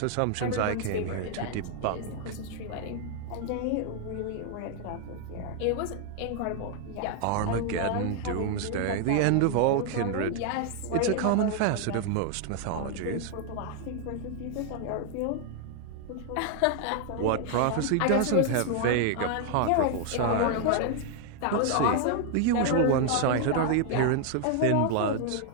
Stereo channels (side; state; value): both; different; correlation 0.00